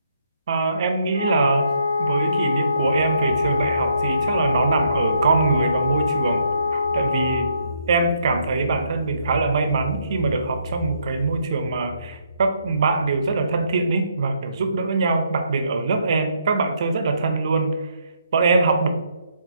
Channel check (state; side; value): inverted; both; correlation -0.72